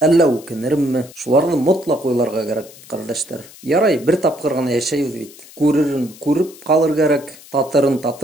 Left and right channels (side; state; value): left; noise; hiss, 21 dB below the sound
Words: үкенермме? Шуларны мотлаҡ уйларға кәрәк, ҡәрҙәштәр. Ярай, бер тапҡыр ғына йәшәйбеҙ бит. Күререн күреп ҡалыр кәрәк, татырын